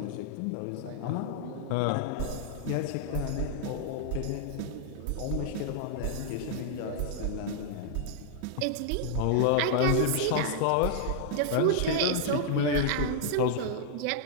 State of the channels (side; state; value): both; different; correlation -0.01